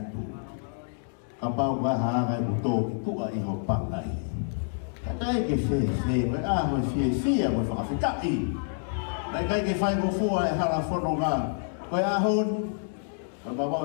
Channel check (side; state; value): right; silent; digital silence